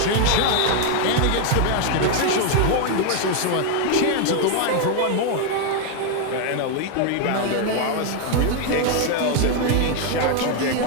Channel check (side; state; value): both; different; correlation 0.01